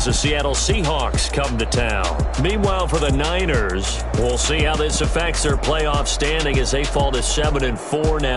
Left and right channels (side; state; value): both; identical; correlation 1.00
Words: the Seattle Seahawks come to town. Meanwhile, for the Niners, we'll see how this affects their playoff standing as they fall to 7-4